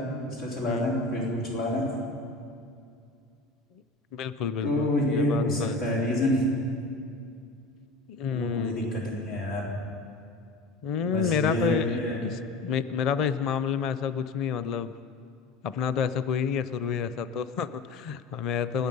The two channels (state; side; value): quieter; right; 3.3 dB